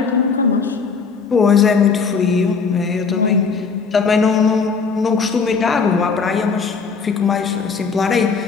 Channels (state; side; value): quieter; right; 5.2 dB